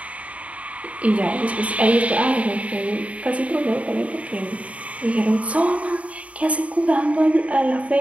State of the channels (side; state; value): left; late; 0.066 ms